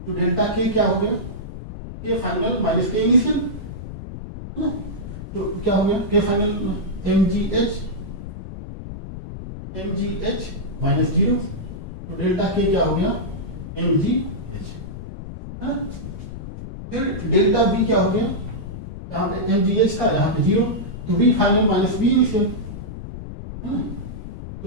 डेल्टा के क्या हो गया, के फाइनल माइनस के इनिशियल है ना, तो क्या हो गया के फाइनल mgh माइनस जीरो, तो डेल्टा के क्या हो गया mgh है ना। फिर डेल्टा बी क्या हो गया, यहाँ पे mgh था यहाँ पे जीरो, तो B final minus B initial है ना,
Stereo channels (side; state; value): left; noise; rumble, 10 dB below the sound